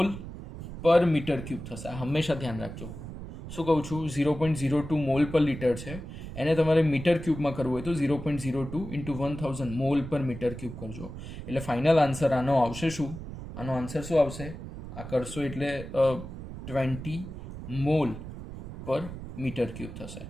પર મીટર ક્યુબ થશે. આ હંમેશા ધ્યાન રાખજો. શું કહું છું? 0.02 મોલ પર લીટર છે, એને તમારે મીટર ક્યુબમાં કરવું હોય તો 0.02 ઇન્ટુ 1000 મોલ પર મીટર ક્યુબ કરજો. એટલે ફાઇનલ આન્સર આનો આવશે શું? આનો આન્સર શું આવશે? આ કરશો એટલે 20 મોલ પર મીટર ક્યુબ થશે.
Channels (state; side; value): noise; right; rumble, 10 dB below the sound